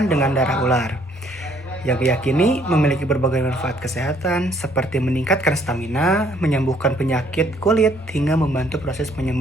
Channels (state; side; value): normal; both; correlation 0.64